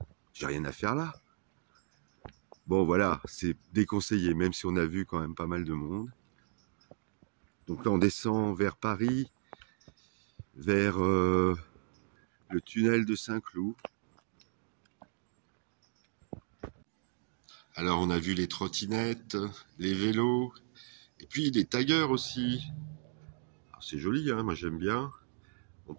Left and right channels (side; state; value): left; silent; digital silence